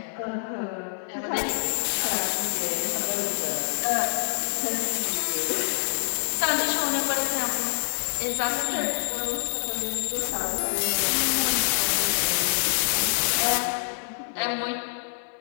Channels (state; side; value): silent; right; digital silence